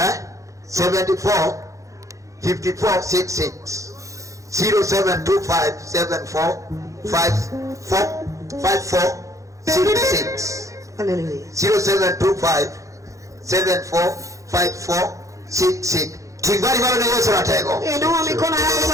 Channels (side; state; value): left; late; 0.15 ms